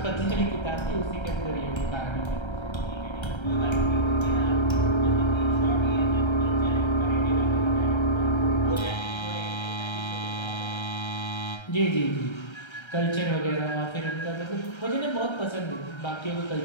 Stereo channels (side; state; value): right; late; 1.3 ms